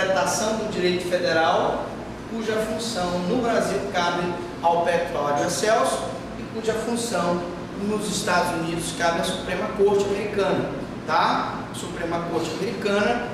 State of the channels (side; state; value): both; identical; correlation 1.00